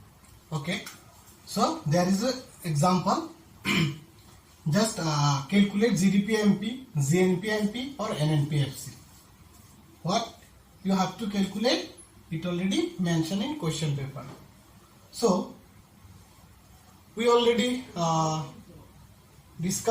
Okay. So there is an example. Just calculate GDP MP, GNP MP or NNP FC. What you have to calculate, it already mentioned in question paper. So we already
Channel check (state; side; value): identical; both; correlation 1.00